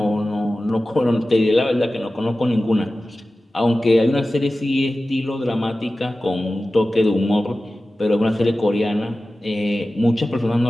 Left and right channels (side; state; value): both; normal; correlation 0.95